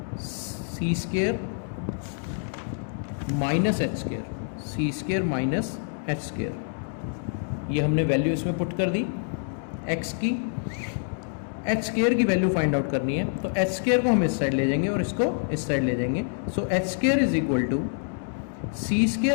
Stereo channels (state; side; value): silent; right; digital silence